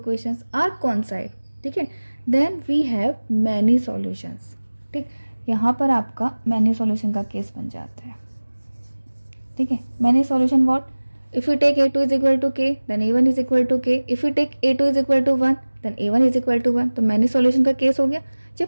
are coincide. ठीक है, then we have many solutions. ठीक, यहाँ पर आपका मैनी सॉल्यूशन का केस बन जाता है। ठीक है, many solution what, If we take A2 is equal to K, then A1 is equal to K. If we take A2 is equal to 1, then A1 is equal to 1. तो मैंने सॉल्यूशन का केस हो गया.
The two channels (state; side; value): inverted; both; correlation -1.00